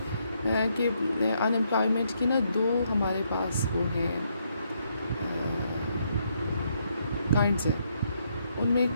کہ ان امپلائمنٹ کی نا دو ہمارے پاس وہ ہیں کائنڈس ہیں, ان میں ایک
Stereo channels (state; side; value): inverted; both; correlation -0.75